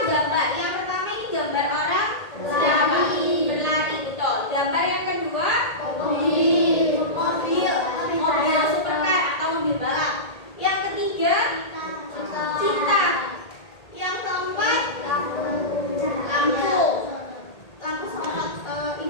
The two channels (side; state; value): right; late; 1.8 ms